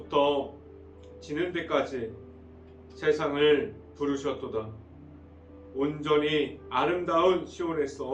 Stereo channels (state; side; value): identical; both; correlation 1.00